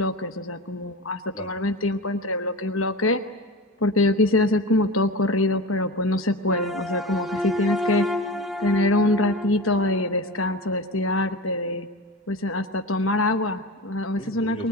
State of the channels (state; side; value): normal; both; correlation 0.29